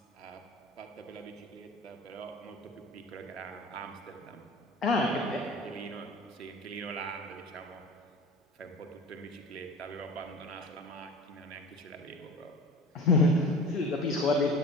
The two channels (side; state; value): both; normal; correlation 0.38